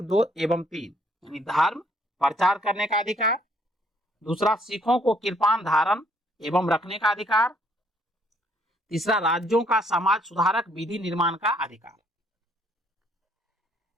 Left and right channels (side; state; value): both; normal; correlation 0.66